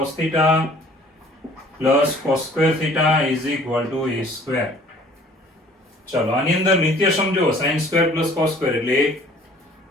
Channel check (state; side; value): normal; both; correlation 0.53